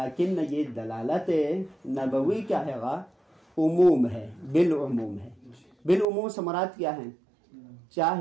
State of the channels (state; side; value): drops out; left; at 6.1 s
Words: یہ دلالت نبوی کیا ہے گا؟ عموم ہے، بالعموم ہے. بالعموم سے مراد کیا ہے؟